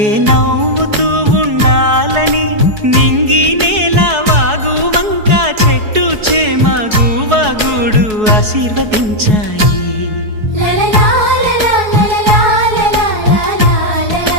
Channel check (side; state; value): left; late; 4.7 ms